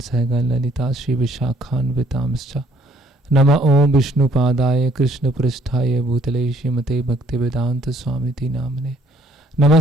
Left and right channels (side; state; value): both; normal; correlation 0.63